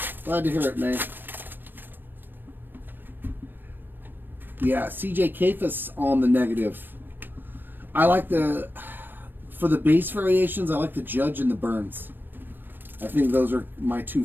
Glad to hear it, May. Yeah, CJ Kafis on the negative. I like for the base variations, I like the Judge and the Burns. I think those are my 2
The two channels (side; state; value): left; late; 0.094 ms